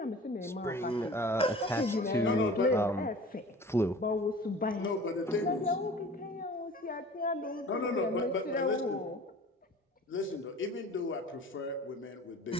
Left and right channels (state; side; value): normal; both; correlation 0.43